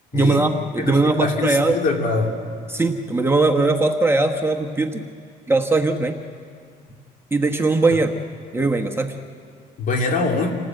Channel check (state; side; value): normal; both; correlation 0.70